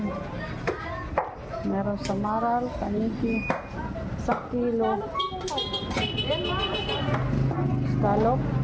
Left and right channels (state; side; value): identical; both; correlation 1.00